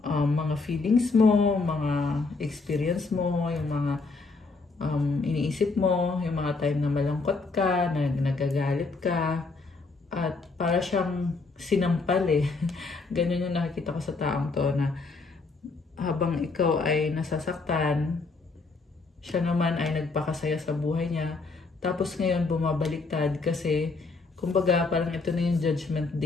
mga feelings mo, mga experience mo, yung mga iniisip mo, yung mga time na malungkot ka, na nagagalit ka, at para siyang sinampal eh. Ganun yung nakikita ko sa taong to na habang ikaw ay nasasaktan, siya naman ay nagpakasaya sa buhay niya. Tapos ngayon bumabaliktad kasi kumbaga parang ito na yung judgment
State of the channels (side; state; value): right; quieter; 3.9 dB